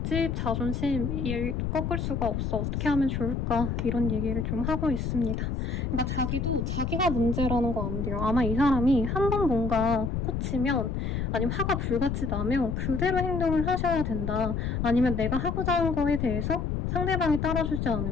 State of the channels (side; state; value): left; noise; rumble, 1 dB below the sound